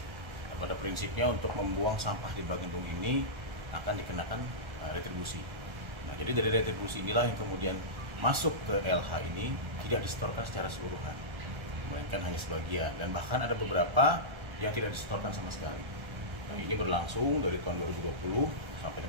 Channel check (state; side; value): late; left; 1.3 ms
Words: pada prinsipnya untuk membuang sampah di bak gedung ini akan dikenakan retribusi. Nah, jadi dari retribusi inilah yang kemudian masuk ke LH ini tidak disetorkan secara keseluruhan, melainkan hanya sebagian, dan bahkan ada beberapa yang tidak disetorkan sama sekali. Nah, ini berlangsung dari tahun 2020 sampai